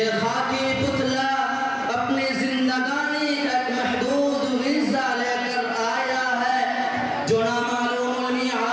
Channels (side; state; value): both; identical; correlation 1.00